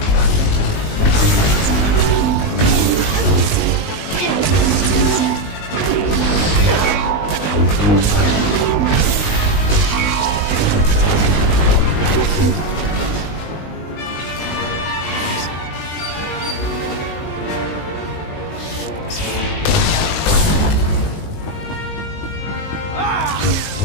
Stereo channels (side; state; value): right; late; 19 ms